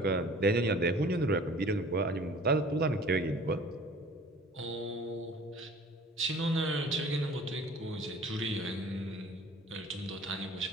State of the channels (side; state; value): both; normal; correlation 0.48